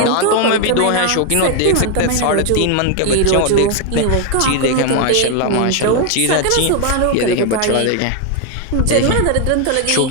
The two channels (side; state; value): both; different; correlation 0.01